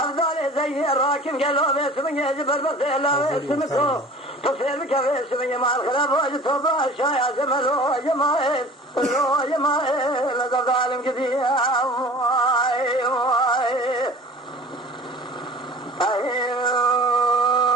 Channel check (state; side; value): normal; both; correlation 0.43